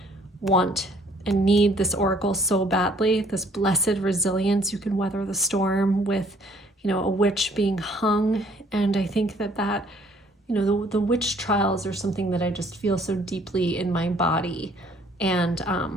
want and need this oracle so badly. This blessed resilience, you can weather the storm, with, you know, a witch being hung. And I think that you know, the witch trials are something that I just feel so deeply in my body. And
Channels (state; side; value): normal; both; correlation 0.61